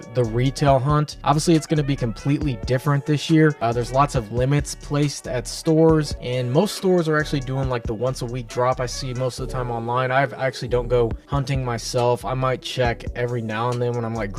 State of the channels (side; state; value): both; identical; correlation 1.00